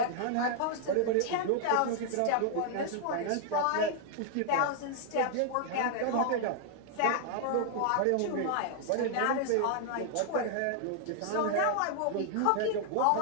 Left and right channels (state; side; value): different; both; correlation 0.00